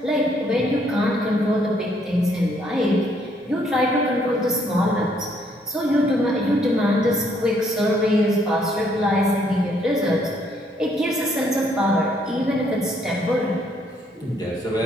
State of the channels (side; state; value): both; normal; correlation 0.68